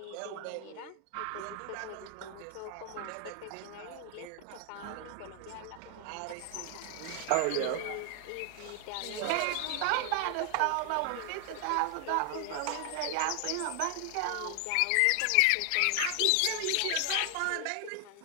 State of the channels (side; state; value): both; different; correlation 0.00